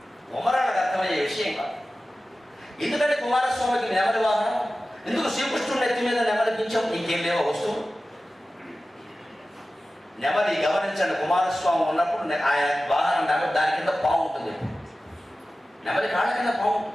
కుమారాలకు అర్థమయ్యే విషయం కాదు. ఎందుకంటే కుమారస్వామికి నెమలి వాహనం, ఎందుకు శ్రీకృష్ణుడి నెత్తి మీద నెమలిపించాం? ఇంకేం లేవో వస్తువు. నెమలి గమనించండి, కుమారస్వామి ఉన్నప్పుడు ఆయన వాహనం నెమలి, దాని కింద పాము ఉంటుంది. నెమలి కాళ్ళ కింద పాము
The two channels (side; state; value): both; normal; correlation 0.95